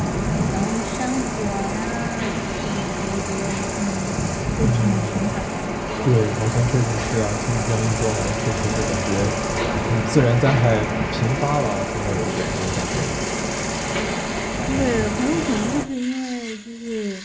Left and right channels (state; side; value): identical; both; correlation 1.00